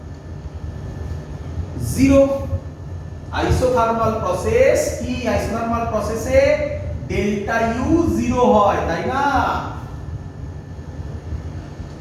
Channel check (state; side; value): identical; both; correlation 1.00